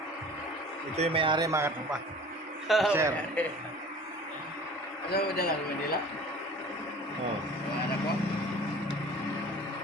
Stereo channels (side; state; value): both; normal; correlation 0.43